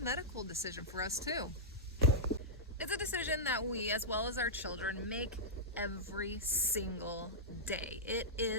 medical decision for us too. It's a decision that we, as well as our children, make every single day. It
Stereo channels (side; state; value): both; normal; correlation -0.09